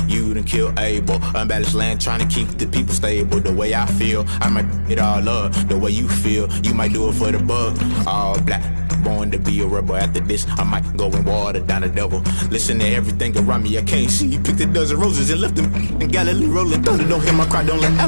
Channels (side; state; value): both; inverted; correlation -1.00